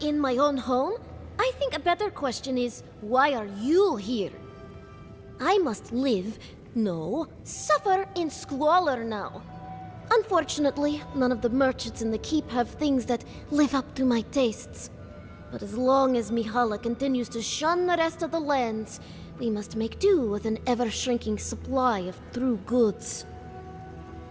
my own home? I think a better question is, why are you here? I must live, no, suffer in squalor now. Unfortunately, none of the merchants in the keep have things that live up to my tastes. But as long as Mihala continues to shun the rest of the lands, We must make do with an ever-shrinking supply of true goods.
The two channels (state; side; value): identical; both; correlation 1.00